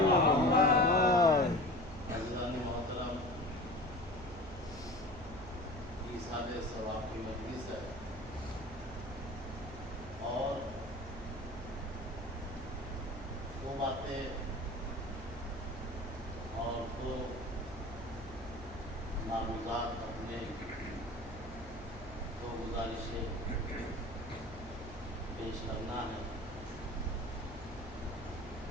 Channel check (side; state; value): right; noise; hum, 14 dB below the sound